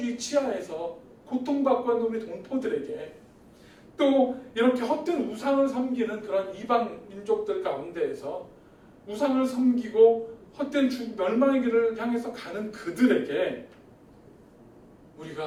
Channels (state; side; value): identical; both; correlation 1.00